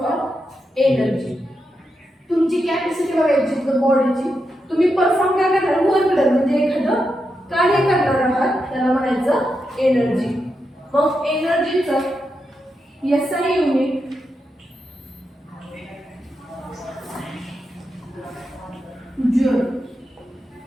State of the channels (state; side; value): normal; both; correlation 0.86